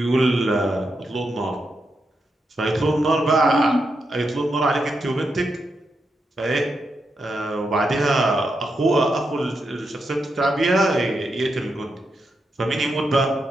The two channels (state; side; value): normal; both; correlation 0.84